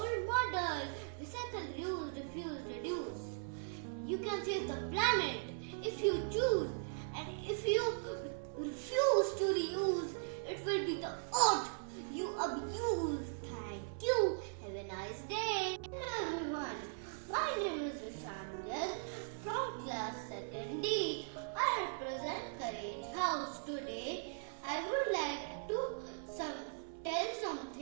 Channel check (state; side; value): silent; left; 52 dB below the other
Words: model. Recycle, reuse, refuse, reduce. You can save the planet if you choose, and if you refuse to reuse, it will be the earth you abuse. Thank you. Have a nice day. Hello everyone. My name is Rushaan Garg from class 2nd D. I represent Courage House. Today I would like to tell